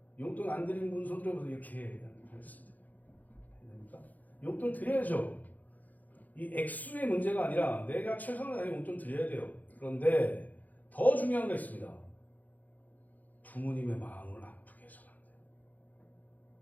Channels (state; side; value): late; right; 0.081 ms